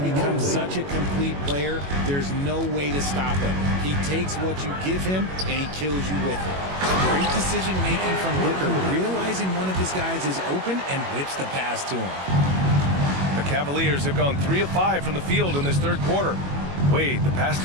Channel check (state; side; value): late; left; 21 ms